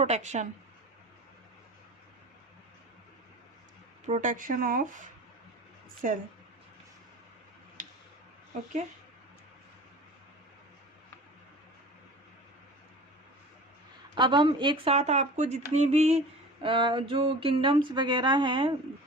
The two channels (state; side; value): normal; both; correlation 0.39